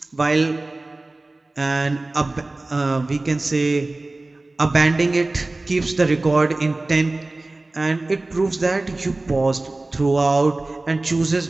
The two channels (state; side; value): quieter; left; 3.0 dB